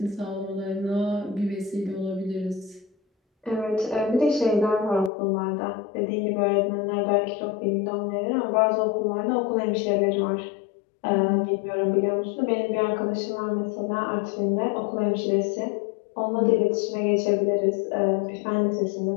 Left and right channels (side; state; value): right; drops out; at 5.1 s